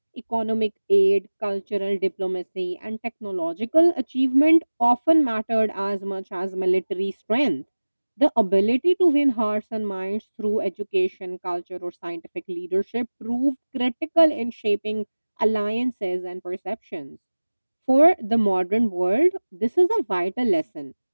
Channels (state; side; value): inverted; both; correlation -1.00